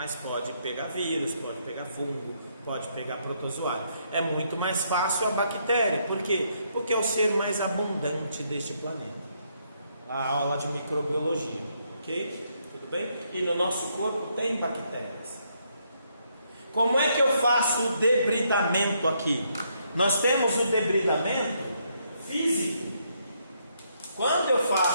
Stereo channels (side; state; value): both; inverted; correlation -0.74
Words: pode pegar vírus, pode pegar fungo, Pode pegar protozoário. É muito mais fácil a bactéria. Por quê? Porque é o ser mais abundante deste planeta. A aula de microbiologia, ok? Tudo bem? E no nosso corpo tem bactérias. Como é que eu faço o debridamento aqui? Nós temos o debridamento físico. Quando eu